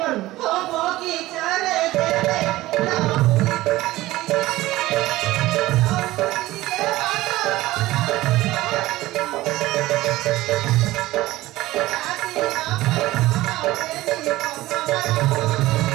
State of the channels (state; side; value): quieter; left; 17.4 dB